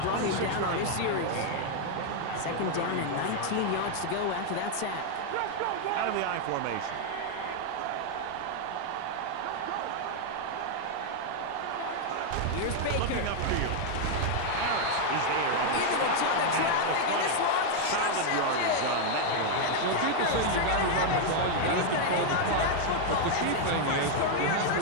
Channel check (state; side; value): different; both; correlation 0.00